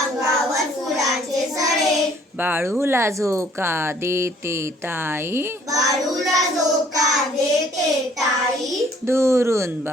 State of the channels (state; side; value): normal; both; correlation 0.59